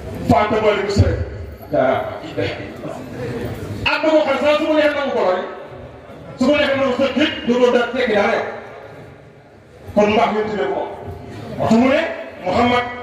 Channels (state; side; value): identical; both; correlation 1.00